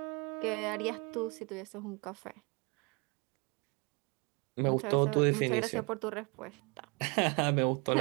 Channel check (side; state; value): left; quieter; 30.7 dB